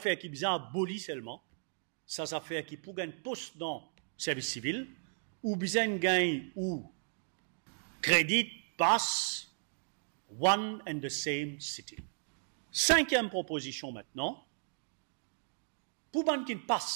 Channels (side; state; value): left; silent; digital silence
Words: qui est bien abolie seulement, ça fait qui pour gagner poste dans le service civil, ou bien gagne ou crédit passe one and the same city. Cinquième proposition maintenant, pour ban qui